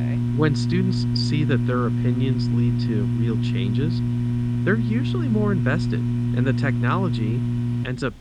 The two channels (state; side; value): identical; both; correlation 1.00